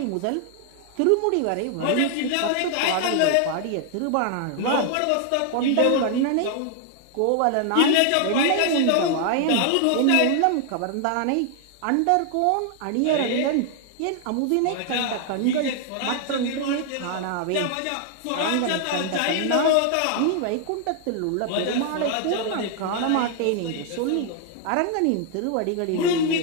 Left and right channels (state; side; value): different; both; correlation 0.00